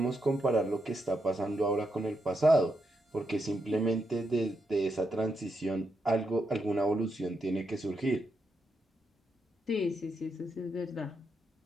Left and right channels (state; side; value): normal; both; correlation 0.82